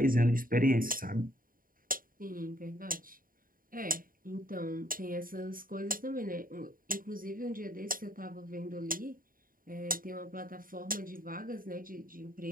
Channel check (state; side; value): late; left; 0.41 ms